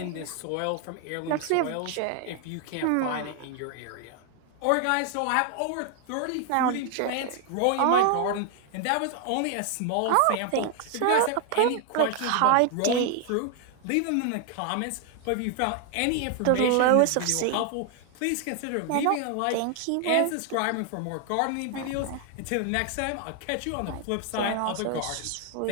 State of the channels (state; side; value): different; both; correlation 0.00